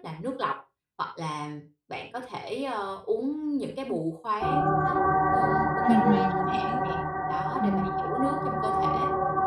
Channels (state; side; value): identical; both; correlation 1.00